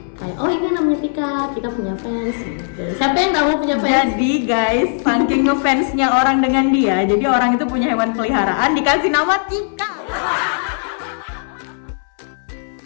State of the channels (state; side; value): silent; right; 67 dB below the other